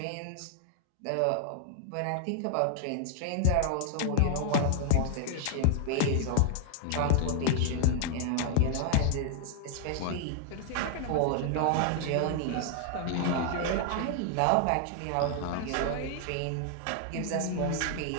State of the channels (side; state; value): both; different; correlation 0.00